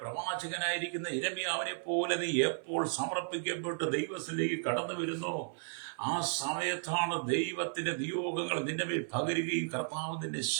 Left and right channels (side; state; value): left; silent; 55 dB below the other